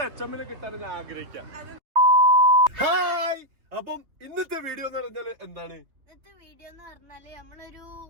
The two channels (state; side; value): late; left; 3.2 ms